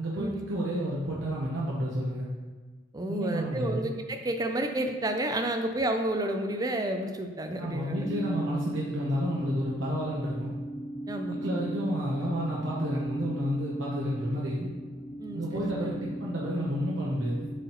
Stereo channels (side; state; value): both; normal; correlation 0.67